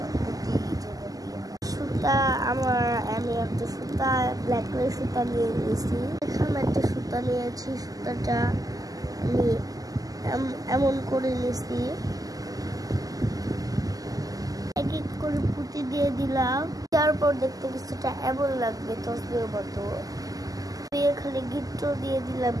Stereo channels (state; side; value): late; left; 0.17 ms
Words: পুঁতি সুতা। আমি একটা সুতা ব্ল্যাক কালার সুতা নিয়ে নিয়েছি। এখানে একটা সুতা নিয়েছি, সুতাটা আমি এমন করে নিয়েছি, এক এক করে পুঁতি দিয়ে দিলাম। তারপর দেখতে কিছুটা এমন লাগবে তসবিহের মতো। এখানে গিট্টো দিয়ে দিলাম,